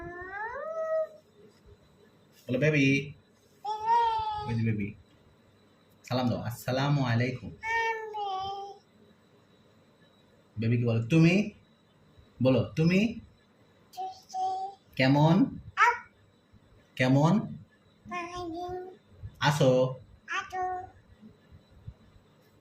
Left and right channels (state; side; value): identical; both; correlation 1.00